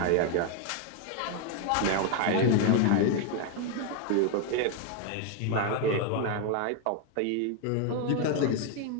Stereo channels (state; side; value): different; both; correlation 0.01